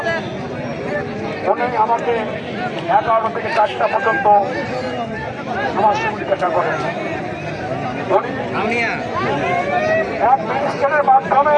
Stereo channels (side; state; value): both; identical; correlation 1.00